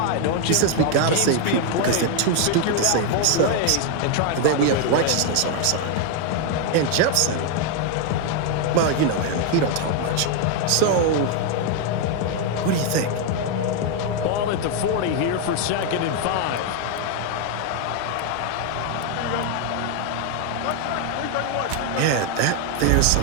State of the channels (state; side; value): different; both; correlation 0.01